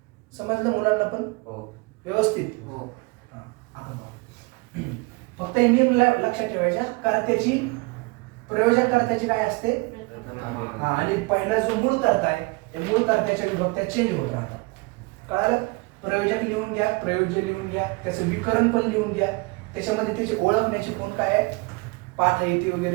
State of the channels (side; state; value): left; quieter; 27.1 dB